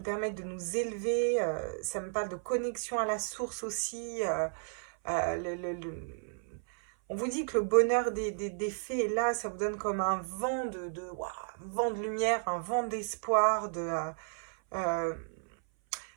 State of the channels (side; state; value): left; silent; 56 dB below the other